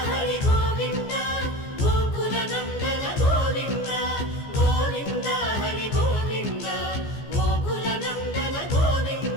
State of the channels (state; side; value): late; right; 14 ms